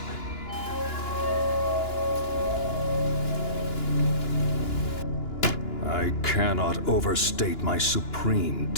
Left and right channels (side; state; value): right; late; 2.9 ms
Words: I cannot overstate my supreme